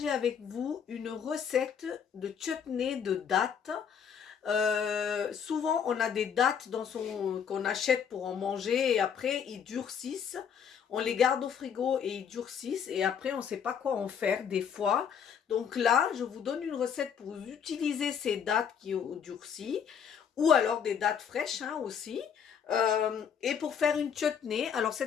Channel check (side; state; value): right; quieter; 7.6 dB